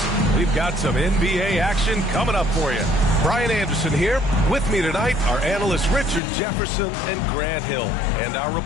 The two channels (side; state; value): right; drops out; at 6.2 s